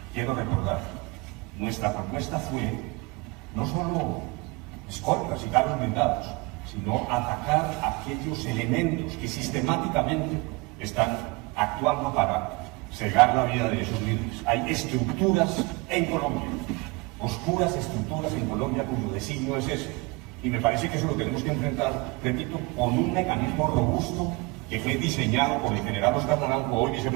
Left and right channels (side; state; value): left; quieter; 26.1 dB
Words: quiero recordar, nuestra propuesta fue no solo escoltas y carros blindados, sino atacar aquellos elementos que sistemáticamente están actuando para cegar la vida de esos líderes. Hay estructuras en Colombia, oscuras estructuras en Colombia cuyo designio es ese. Y me parece que eso lo tenemos que enfrentar, repito, con un mecanismo robusto que fue diseñado por el general Oscar Naranjo, hoy